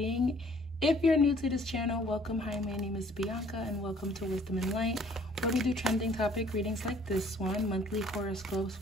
If you're new to this channel, welcome. Hi, my name is Bianca and welcome to Wisdom and Light, where we do trending topic readings like this one, monthly horoscopes,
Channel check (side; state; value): both; normal; correlation 0.58